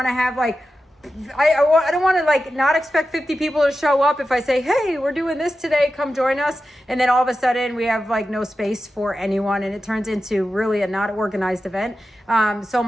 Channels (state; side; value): normal; both; correlation 0.92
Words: to have I don't want to not expect 50 people to show up if I say, hey, we're doing this today, come join us. And then all of a sudden we have no space for anyone, and it turns into really a not organized event. So